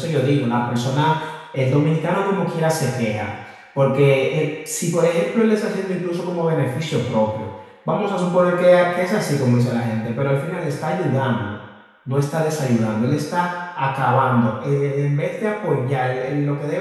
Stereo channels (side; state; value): both; identical; correlation 1.00